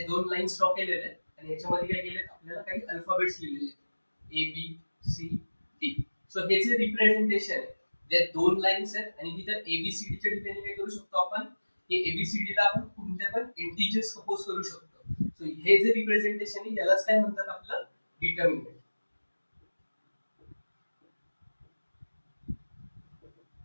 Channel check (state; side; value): inverted; both; correlation -1.00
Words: दोन लाईन्स ड्रॉ केलेले आहेत आणि याच्यामध्ये काय केले, आपल्याला काही अल्फाबेट्स लिहिलेले आहेत A B C D. So हे जे रिप्रेझेंटेशन आहे, जे दोन लाईन्स आहेत आणि तिथे एबीसीडी च्या ठिकाणी काय करू शकतो आपण, हे एबीसीडी ला आपण कोणत्या पण इंटिजर्स सपोज करू शकतो. सो हे जे रिप्रेझेंटेशन आहे यालाच काय म्हणतात, आपलं डिटर्मिनंट.